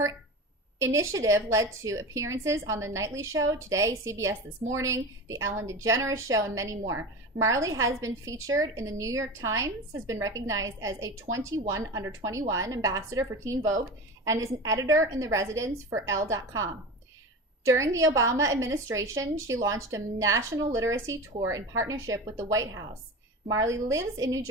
initiative led to appearances on The Nightly Show, Today, CBS This Morning, The Ellen DeGeneres Show, and many more. Marley has been featured in the New York Times, has been recognized as a 21 under 21 ambassador for Teen Vogue, and is an editor in the residence for Elle.com. During the Obama administration, she launched a national literacy tour in partnership with the White House. Marley lives in New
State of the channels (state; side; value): normal; both; correlation 0.29